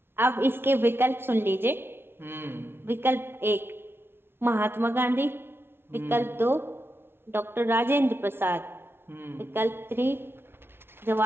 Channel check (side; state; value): left; late; 0.11 ms